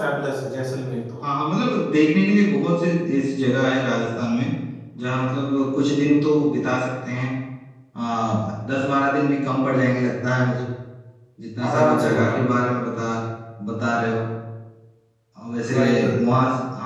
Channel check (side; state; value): both; identical; correlation 1.00